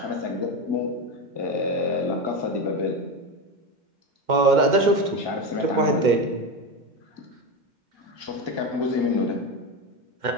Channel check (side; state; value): left; late; 2.1 ms